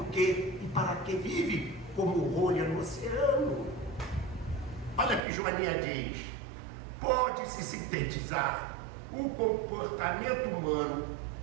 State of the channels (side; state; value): left; drops out; at 5.2 s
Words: quê e para que vive, como rolha no oceano. Olha que Joaninha diz: pode-se sintetizar o comportamento humano